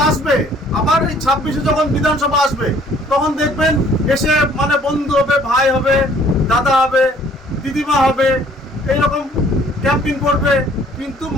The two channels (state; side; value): normal; both; correlation 0.58